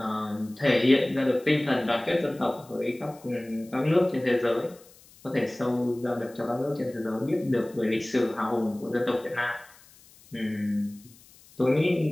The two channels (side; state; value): left; noise; hiss, 25 dB below the sound